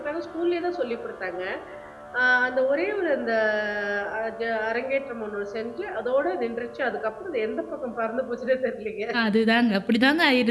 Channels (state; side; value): identical; both; correlation 1.00